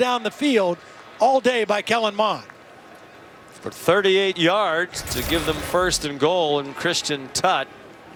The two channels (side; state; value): both; identical; correlation 1.00